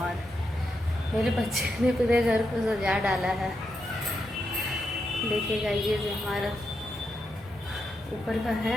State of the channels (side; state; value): both; normal; correlation 0.84